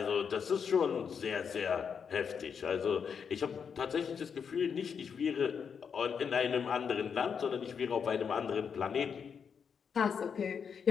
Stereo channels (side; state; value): right; quieter; 6.7 dB